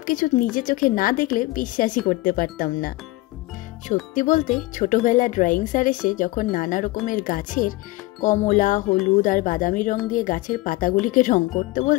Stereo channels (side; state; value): right; quieter; 20.2 dB